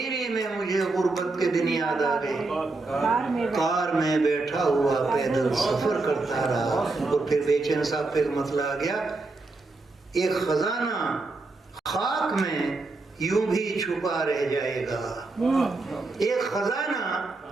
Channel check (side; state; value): left; quieter; 3.4 dB